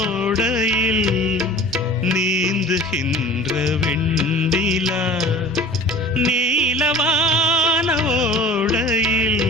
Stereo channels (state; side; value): normal; both; correlation 0.43